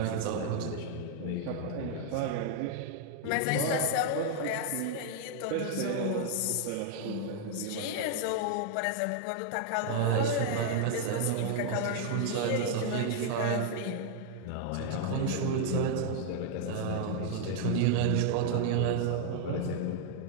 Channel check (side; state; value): both; different; correlation 0.00